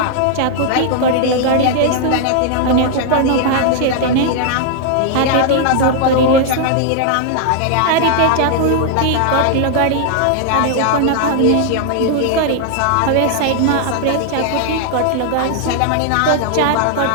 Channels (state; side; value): different; both; correlation -0.01